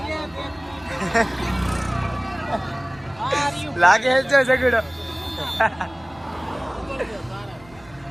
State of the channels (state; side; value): noise; left; rumble, 25 dB below the sound